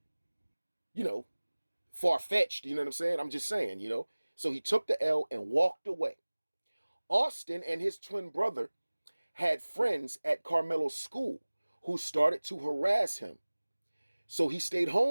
far-fetched. You know what I'm saying? I'm just saying, So he took the L and walked away. Austin and his twin brother had friends at Carmelo's school who started to harass him. So he stayed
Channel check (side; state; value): both; inverted; correlation -1.00